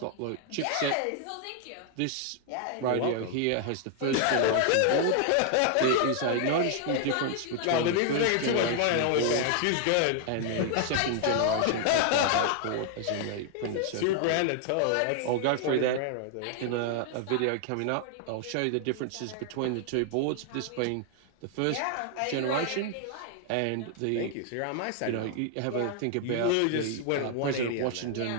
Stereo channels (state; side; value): different; both; correlation 0.00